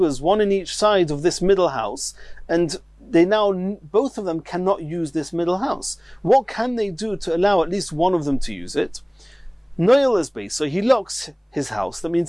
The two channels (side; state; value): both; identical; correlation 1.00